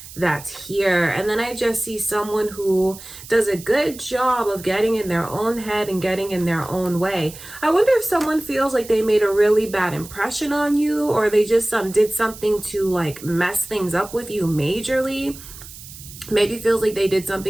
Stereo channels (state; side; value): noise; right; hiss, 16 dB below the sound